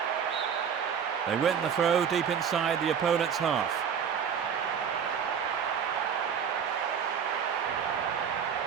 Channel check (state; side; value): quieter; left; 7.5 dB